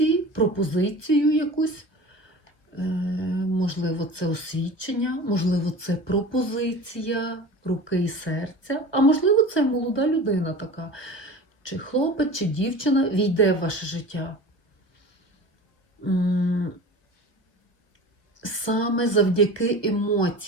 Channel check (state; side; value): late; right; 1.1 ms